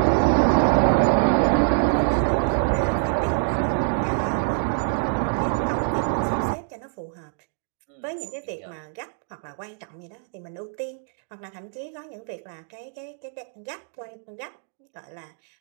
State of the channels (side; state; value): left; silent; digital silence